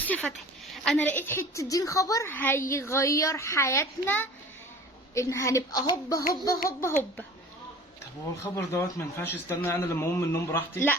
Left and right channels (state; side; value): normal; both; correlation 0.43